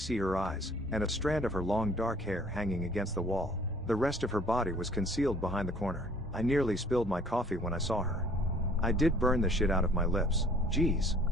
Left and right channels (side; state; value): both; normal; correlation 0.54